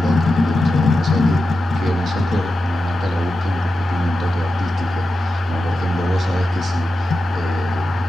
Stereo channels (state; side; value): normal; both; correlation 0.91